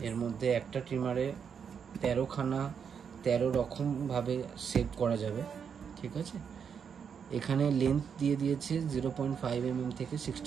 এর মধ্যে একটা ট্রিমারে 13 রকমভাবে সেভ করা যাবে, ঠিক আছে। এখানে লেন্থ দিয়ে দিয়েছে 0.5 mm থেকে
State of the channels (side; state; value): left; quieter; 7.0 dB